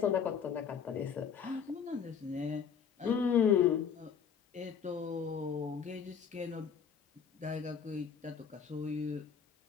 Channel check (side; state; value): right; quieter; 7.1 dB